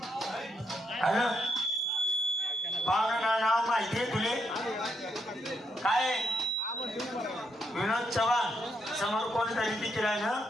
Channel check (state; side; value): normal; both; correlation 0.77